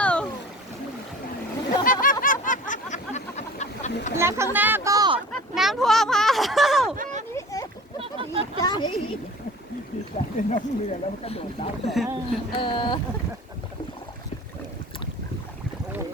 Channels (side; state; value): both; normal; correlation 0.42